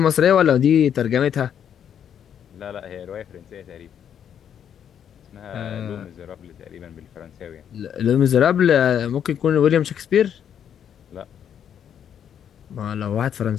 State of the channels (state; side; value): quieter; right; 8.9 dB